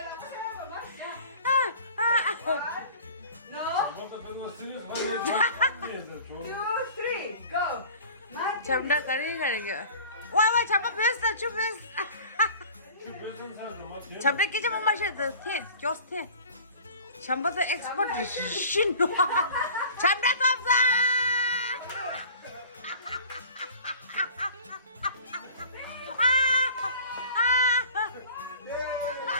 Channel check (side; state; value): both; inverted; correlation -0.43